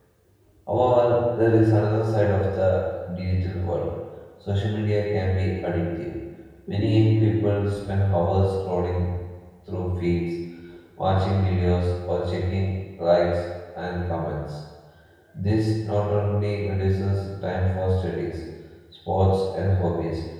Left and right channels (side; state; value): both; identical; correlation 1.00